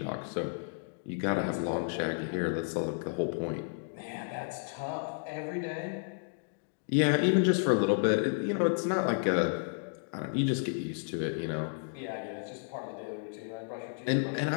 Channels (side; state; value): right; silent; digital silence